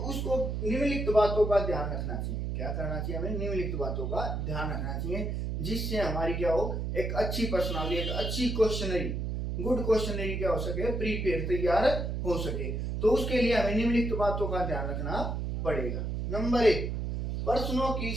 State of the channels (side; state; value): right; noise; hum, 2 dB below the sound